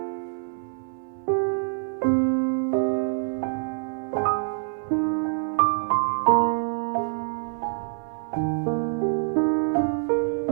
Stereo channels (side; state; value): left; silent; 61 dB below the other